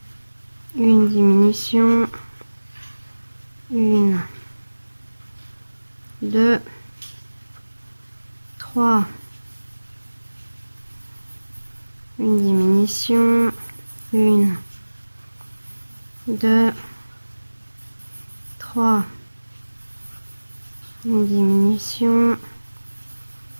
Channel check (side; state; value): both; inverted; correlation -1.00